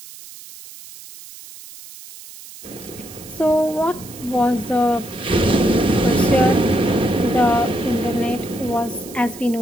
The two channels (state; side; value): noise; right; hiss, 17 dB below the sound